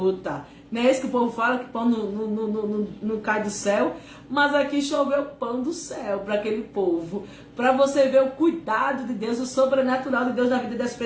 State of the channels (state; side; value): identical; both; correlation 1.00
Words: Não é isso que o povo fala, que pão não cai do céu? Mas aqui choveu pão do céu para aquele povo. Para você ver o cuidado de Deus, o sobrenatural de Deus na vida das